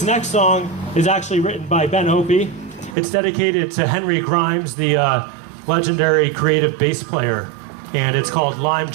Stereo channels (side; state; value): left; drops out; at 3.0 s